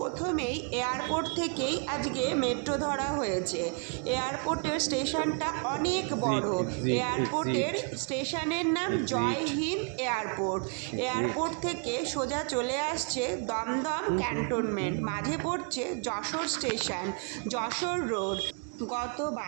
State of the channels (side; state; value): left; quieter; 38.2 dB